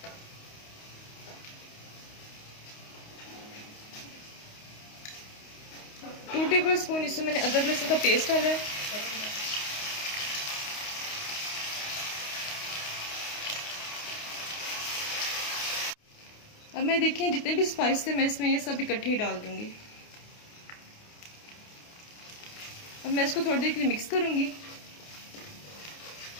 टू टेबल स्पून इसमें मैंने अदरक लहसुन का पेस्ट डाला है। अब मैं देखिए जितने भी स्पाइस थे मैं इसमें ये सब इकट्ठे ही डाल दूंगी। अब मैं इसको थोड़ी देर के लिए मिक्स करूंगी।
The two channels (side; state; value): right; late; 28 ms